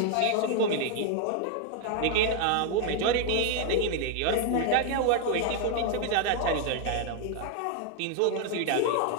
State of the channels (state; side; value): different; both; correlation 0.00